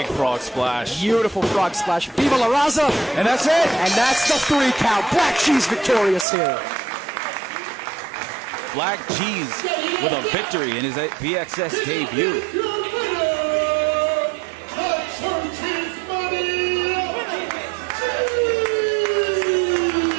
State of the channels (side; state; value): left; drops out; at 6.2 s